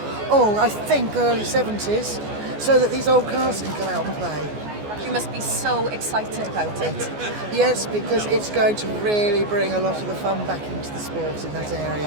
I think early 70s, so that these old cars can come out and play. You must be so excited about it. Yes, because it's going to really bring a lot of the fun back into the sport in that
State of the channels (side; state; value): left; late; 14 ms